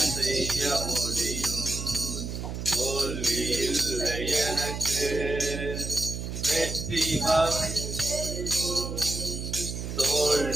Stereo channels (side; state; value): right; noise; hum, 5 dB below the sound